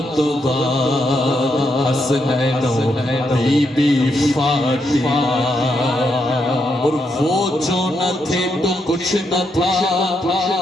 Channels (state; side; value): normal; both; correlation 0.80